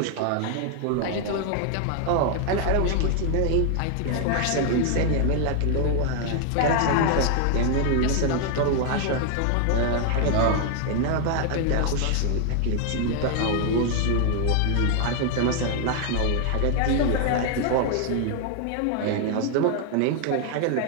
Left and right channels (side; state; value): both; different; correlation 0.00